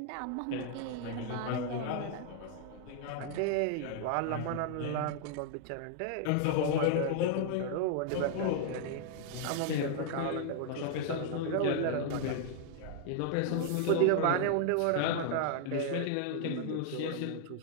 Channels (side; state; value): both; different; correlation 0.00